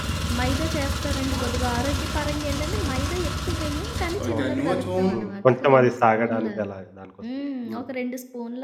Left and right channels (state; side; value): identical; both; correlation 1.00